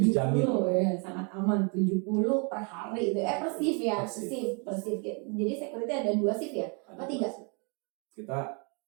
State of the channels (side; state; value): left; quieter; 35.5 dB